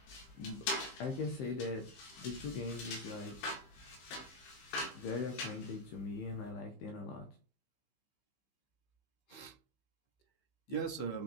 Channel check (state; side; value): late; right; 15 ms